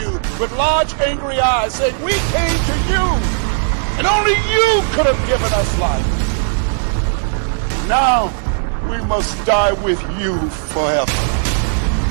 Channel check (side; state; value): left; silent; digital silence